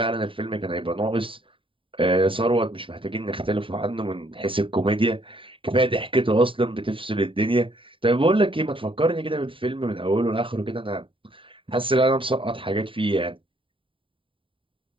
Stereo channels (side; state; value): left; late; 0.25 ms